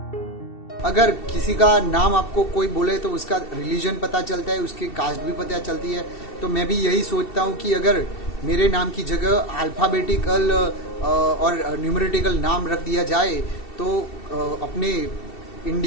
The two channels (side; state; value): right; late; 2.7 ms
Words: अगर किसी का नाम आपको कोई बोले तो उसका रिलीजन पता चलता है, उसकी कास्ट भी पता चलती है। तो मैं भी यही सोचता हूँ कि अगर मेरे नाम की जगह अल्फ़ाबेटिकल और न्यूमेरिटिकल नाम रख दिया जाए तो अपने